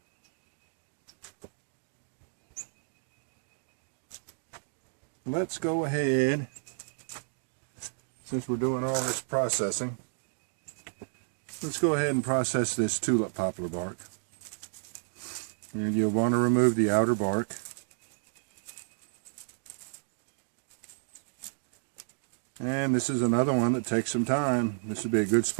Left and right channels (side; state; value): left; silent; digital silence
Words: Let's go ahead, since we're doing all this processing, let's go ahead and process this tulip poplar bark. And you'll want to remove the outer bark. And this is another one that takes some time. This would be a good